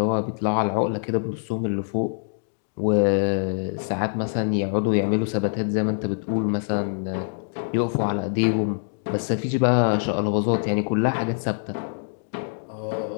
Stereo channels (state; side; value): silent; right; digital silence